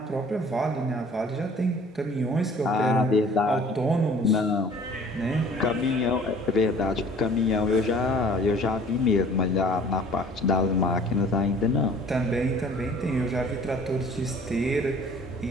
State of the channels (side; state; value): both; normal; correlation 0.51